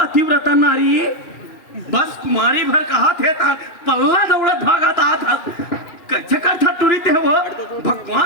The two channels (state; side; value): late; right; 2.3 ms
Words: नारी बस कुमारी भर कहा थे पल्ला दौड़त भागता था कैसे करता टूरी थे वो